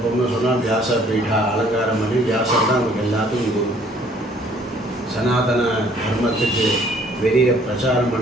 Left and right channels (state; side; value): normal; both; correlation 0.59